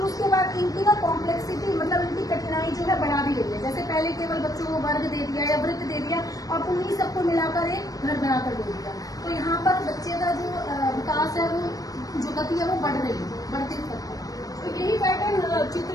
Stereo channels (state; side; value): late; right; 0.18 ms